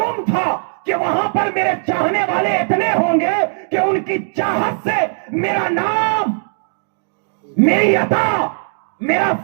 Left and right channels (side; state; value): left; silent; digital silence